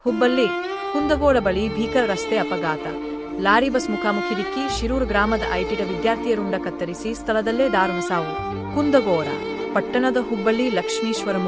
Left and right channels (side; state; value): both; identical; correlation 1.00